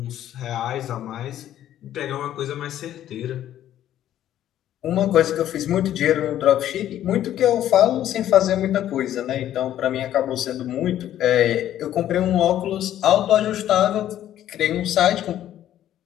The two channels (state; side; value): quieter; right; 11.9 dB